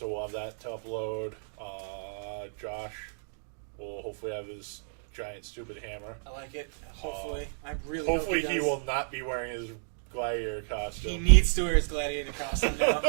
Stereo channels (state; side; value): silent; left; digital silence